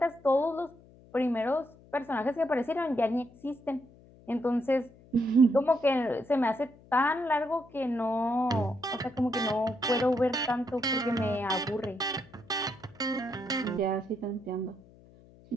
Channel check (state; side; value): noise; left; hum, 25 dB below the sound